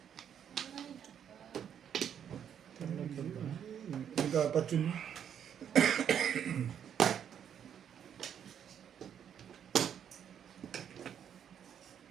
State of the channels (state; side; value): quieter; left; 8.8 dB